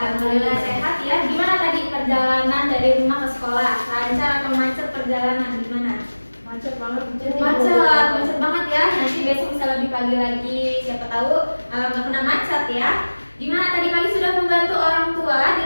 sehat ya. Gimana tadi perjalanan dari rumah ke sekolah? Lancar atau macet perjalanan? Gimana? Macet banget. Macet banget ya. Nanti besok bisa lebih pagi lagi. Siapa tahu nggak kena macet ya. Gimana tadi pagi sudah membantu orang tua di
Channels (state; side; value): inverted; both; correlation -1.00